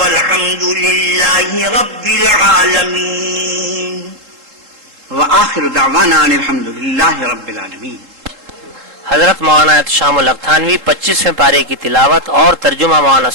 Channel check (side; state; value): left; late; 3.7 ms